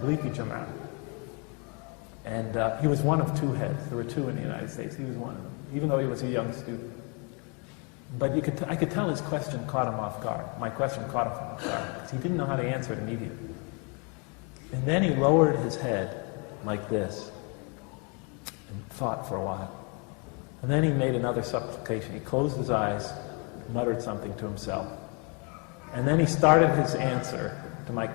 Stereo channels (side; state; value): right; quieter; 34.3 dB